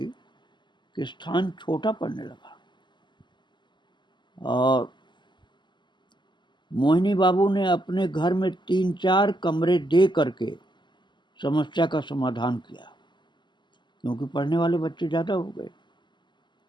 कि स्थान छोटा पड़ने लगा और मोहिनी बाबू ने अपने घर में 3-4 कमरे दे करके समस्या का समाधान किया, क्योंकि पढ़ने वाले बच्चे ज़्यादा हो गए।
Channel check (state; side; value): late; right; 0.22 ms